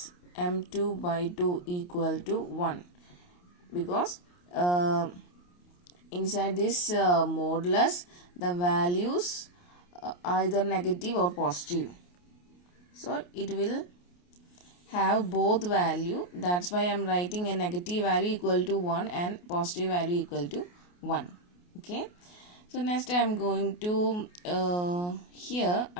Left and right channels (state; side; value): late; right; 28 ms